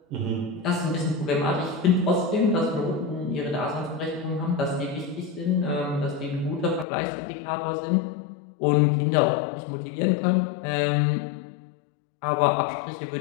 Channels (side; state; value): right; drops out; at 6.9 s